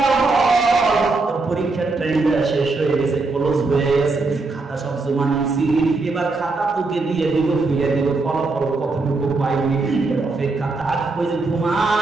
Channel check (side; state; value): left; quieter; 3.6 dB